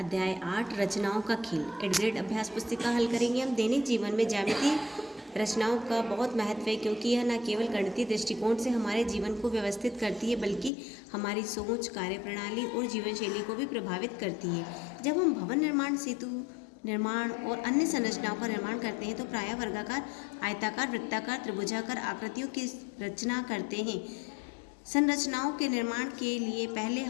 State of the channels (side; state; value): right; drops out; at 10.7 s